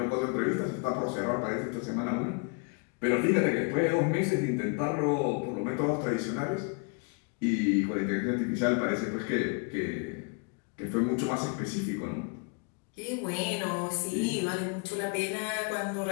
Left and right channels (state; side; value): quieter; right; 34.0 dB